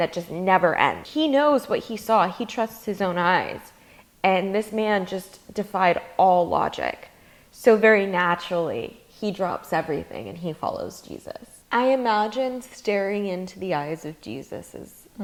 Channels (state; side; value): identical; both; correlation 1.00